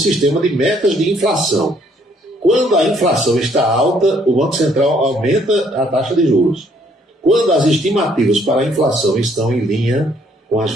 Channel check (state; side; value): normal; both; correlation 0.66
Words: de metas de inflação. Quando a inflação está alta, o Banco Central aumenta a taxa de juros. Quando as estimativas para a inflação estão em linha com